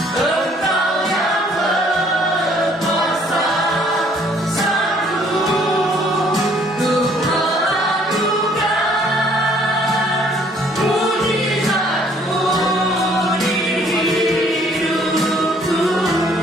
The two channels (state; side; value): normal; both; correlation 0.61